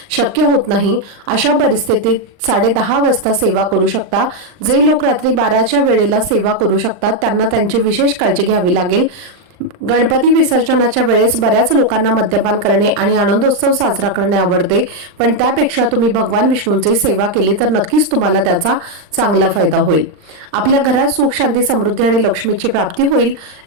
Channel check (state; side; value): late; left; 39 ms